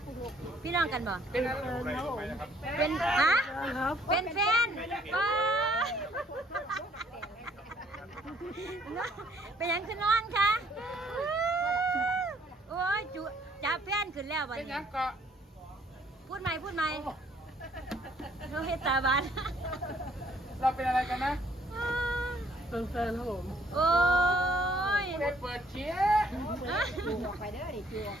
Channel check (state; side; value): normal; both; correlation 0.63